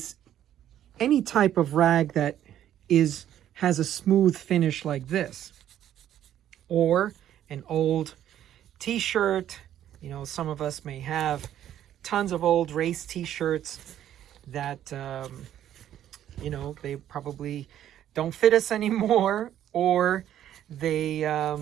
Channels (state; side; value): quieter; left; 11.3 dB